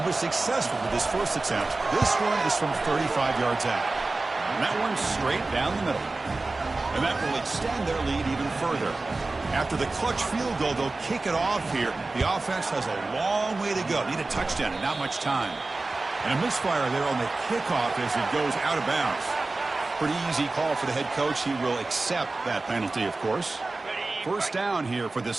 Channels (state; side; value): quieter; left; 3.3 dB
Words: was successful with his first attempt. This one is from 35 yards out. And that one's straight down the middle. And that will extend their lead even further. After the clutch field goal, they'll kick it off here. The offense has a long way to go. Need a touchdown and not much time. And a misfire there on the kickoff as it goes out of bounds. pretty easy call for the head coach. He will accept that penalty, of course. First down here for